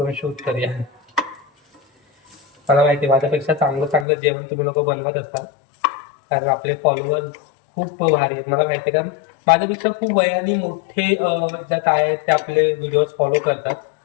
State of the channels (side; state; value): right; drops out; at 4.0 s